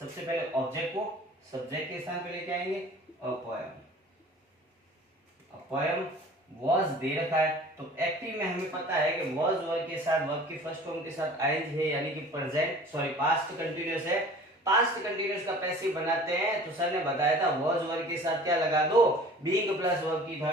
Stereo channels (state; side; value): normal; both; correlation 0.45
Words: पहले ऑब्जेक्ट को सब्जेक्ट के स्थान पे लेके आएंगे, a poem. A poem was दे रखा है तो एक्टिव में हमें पता है कि वॉज वर्ब के साथ, वर्ब की फर्स्ट फॉर्म के साथ आईएनजी है यानी कि प्रेजेंट सॉरी पास्ट कंटीन्यूअस है। पास्ट कंटीन्यूअस का पैसिव बनाते हैं तो सर ने बताया था वॉज वर्ब के साथ क्या लगा दो, बीइंग प्लस वर्ब की